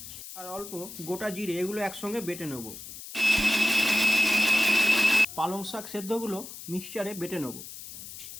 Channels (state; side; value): noise; left; hiss, 12 dB below the sound